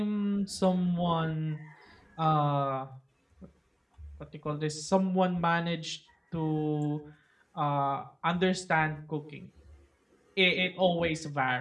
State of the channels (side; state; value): both; identical; correlation 1.00